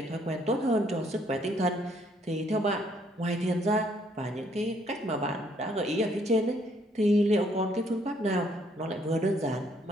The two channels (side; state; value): both; normal; correlation 0.67